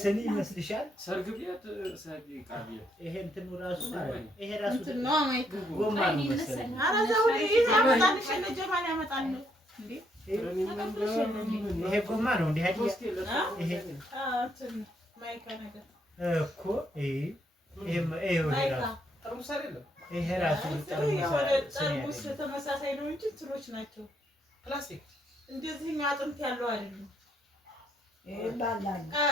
ይመስልሻል? ሰርግ ቤት ይሄ እንትኑ ራሱ ይሄ ራሱ ጎማ ነው መሰለኝ። ይሄ ጎማ ነው እንዴ? ይሄ እኮ ይሄ ራሱ ጠርሙስ ተመሳሳይ ነው እንጂ እንትኖች ናቸው ፕላስቲክ። እንደዚህ አጥንት ያለው አይደለም።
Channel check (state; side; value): normal; both; correlation 0.73